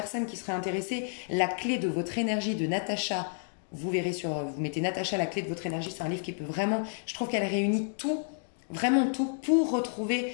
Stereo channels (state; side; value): silent; right; digital silence